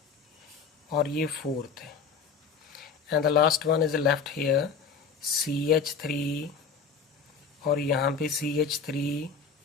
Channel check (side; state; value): right; quieter; 5.6 dB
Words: और ये फोर्थ है. And the last one is the left here CH3 और यहाँ पे CH3